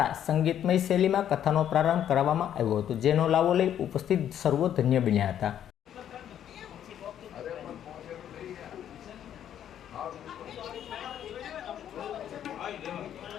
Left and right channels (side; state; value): right; quieter; 10.2 dB